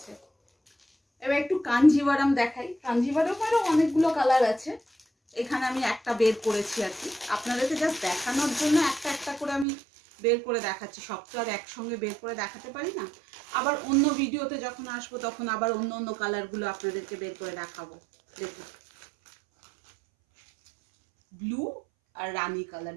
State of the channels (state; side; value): drops out; left; at 9.7 s